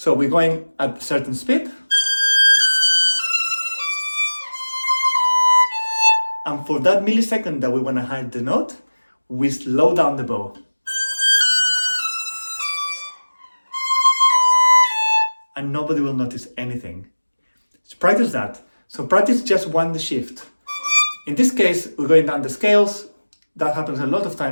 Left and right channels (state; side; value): inverted; both; correlation -1.00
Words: we're going at a certain speed. And for that millisecond that we want to hide the note, we slow down the bow. And nobody will notice anything. So practice that. So practice just one shift. In this case, we're going down the scales That happens a lot of